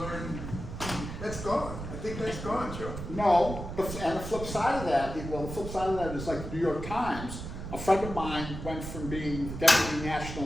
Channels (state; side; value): noise; right; rumble, 8 dB below the sound